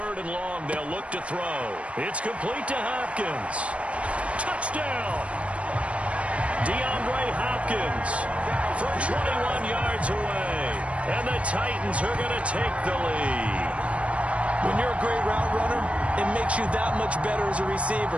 and long, they'll look to throw. It's complete to Hopkins. Touchdown! DeAndre Hopkins from 21 yards away. And the Titans are going to take the lead. When you're a great route runner, it makes you that much better as a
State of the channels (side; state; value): left; late; 0.062 ms